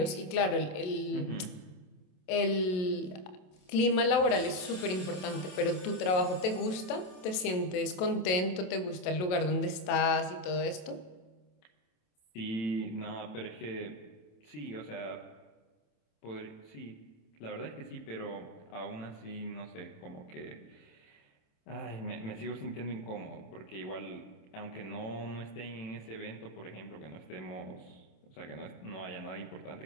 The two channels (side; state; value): right; late; 27 ms